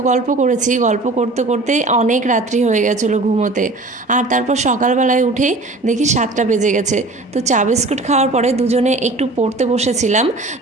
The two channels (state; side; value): quieter; left; 3.0 dB